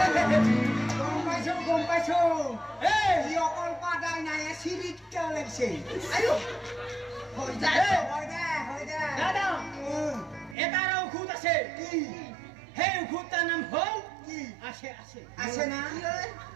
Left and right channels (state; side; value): drops out; left; at 10.6 s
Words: গম পাইছো এই অকল পাদাই নাই সিরিট কে লাগছে আয়ো হই যায় হয় দে দাদা এটারও খুদ আছে কি হে খুদটার নাম হল কি আসে আছে না